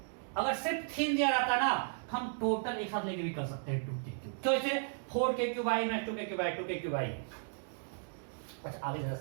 अगर सिर्फ थिन दिया रहता ना हम टोटल एक साथ लेके भी कर सकते हैं 2k क्यूब। तो इसे 4k क्यूब आई माइनस 2k क्यूब आई, 2k क्यूब आई। अच्छा आगे जरा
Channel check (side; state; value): left; silent; digital silence